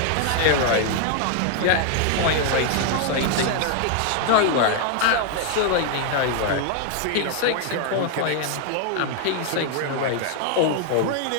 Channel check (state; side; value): different; both; correlation 0.00